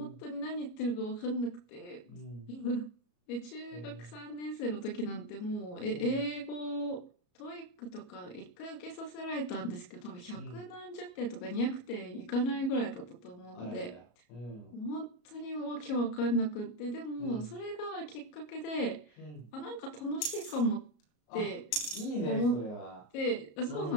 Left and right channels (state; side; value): late; right; 33 ms